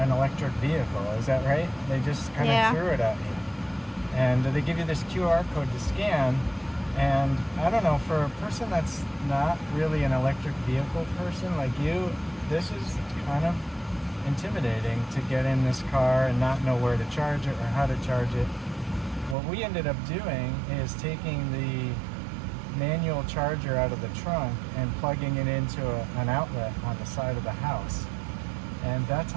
electric vehicle. Is that right? They just kind of threw it at you. And they give you this QR code to scan. And I don't know, for a person that's not really an electric vehicle person like you, this is kind of intimidating to get in this car and not know where to charge it or how to charge it. What we ended up doing is taking the manual charger out of the trunk and plugging it into an outlet on the side of the house. And that's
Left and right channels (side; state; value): left; drops out; at 19.4 s